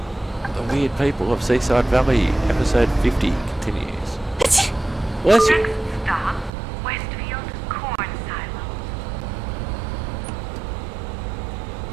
The Weird People of Seaside Valley, episode 50 continues. Bless you. Next stop, Westfield Corn Silo.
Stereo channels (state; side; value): drops out; left; at 6.5 s